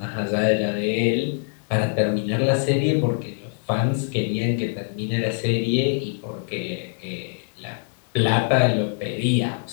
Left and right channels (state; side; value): silent; right; 63 dB below the other